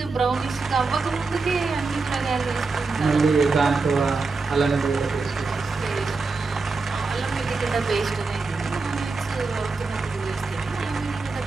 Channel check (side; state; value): left; quieter; 4.1 dB